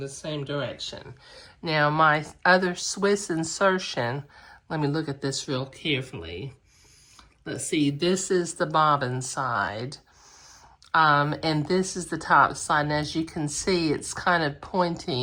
same direction. Now my other Swiss insertion, let me look at this real carefully. Let's see, this is the bobbin side, and this is the top side. And as you can see, it's kind of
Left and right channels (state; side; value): identical; both; correlation 1.00